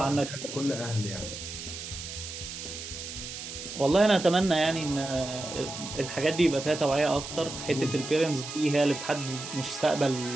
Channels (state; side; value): noise; right; hiss, 9 dB below the sound